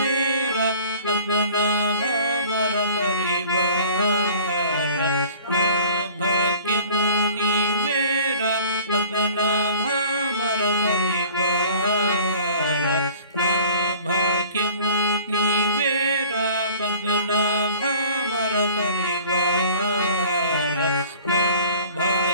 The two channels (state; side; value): inverted; both; correlation -0.48